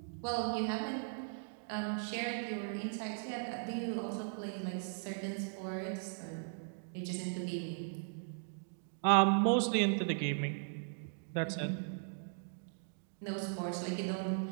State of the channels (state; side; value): silent; left; digital silence